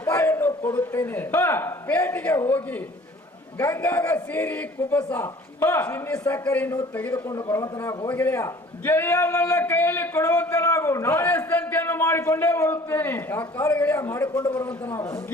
ಕೊಡುತ್ತೇನೆ, ಪೇಟೆಗೆ ಹೋಗಿ ಗಂಗಾಗ ಸೀರಿ ಕುಬಸ ಚಿನ್ನಿ ಸಕ್ಕರೆಯನ್ನು ತೆಗೆದುಕೊಂಡು ಬರುವಂತನಾಗು ಹೋಗಿದೆಯಾ ಗೆಳೆಯ. ನನ್ನ ಕೈಯಲ್ಲಿ ಕೊಡುವಂತನಾಗು, ನಾಳೆ ಸಂತೆಯನ್ನು ಮಾಡಿಕೊಂಡೇ ಬರುತ್ತೇನೆ. ಯಾಕಾಲ ಗೆಳೆಯ ಮಾಡಿಕೊಂಡು ಬರುವಂತನಾಗು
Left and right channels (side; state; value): both; normal; correlation 0.50